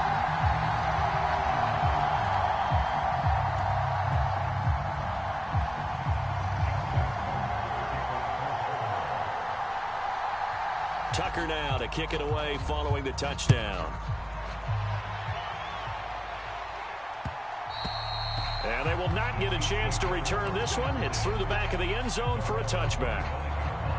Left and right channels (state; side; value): identical; both; correlation 1.00